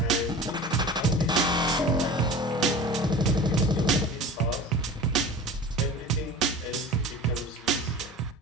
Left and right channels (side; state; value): both; normal; correlation 0.37